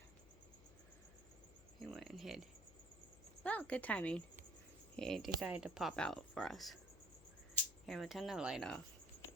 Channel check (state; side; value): noise; left; hum, 20 dB below the sound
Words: He went and hid. Well, good timing. He decided to pop out for us. Here, we'll turn the light off.